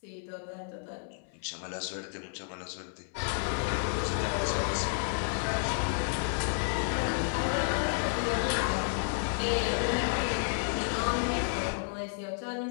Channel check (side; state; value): right; silent; 57 dB below the other